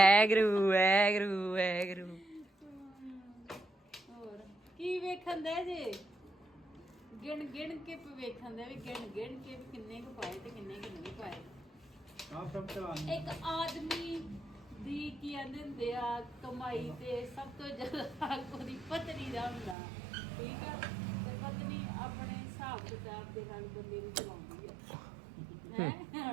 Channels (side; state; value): left; drops out; at 19.8 s